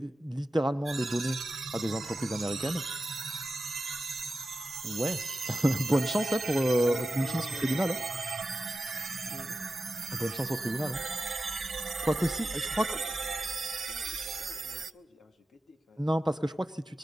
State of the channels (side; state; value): both; normal; correlation 0.93